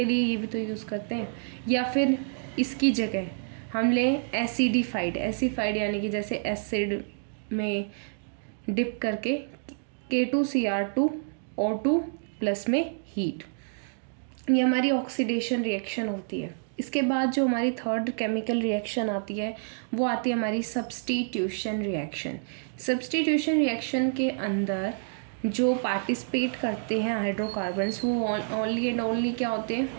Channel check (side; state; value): left; silent; digital silence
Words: लिए ये भी तो यूज़ करते हैं। या फिर इसकी जगह हम लें एसिडिफाइड यानी कि जैसे एसिड में डिप करके K2Cr2O2 प्लस में हीट, ये हमारी ऑक्सीडेशन रिएक्शन होती है। इसके बाद जो हमारी थर्ड केमिकल रिएक्शन आती है वो आती है हमारी सब्स्टिट्यूशन रिएक्शन। सब्स्टिट्यूशन रिएक्शन के अंदर जो पार्टिसिपेट करते हैं हाइड्रोकार्बन्स वो ओनली एंड ओनली क्या होते हैं,